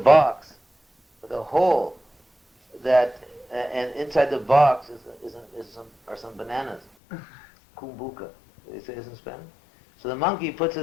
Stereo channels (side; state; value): right; drops out; at 6.9 s